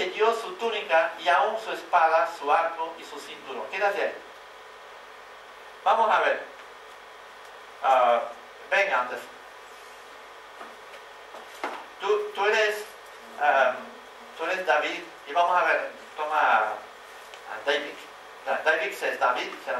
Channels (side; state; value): both; identical; correlation 1.00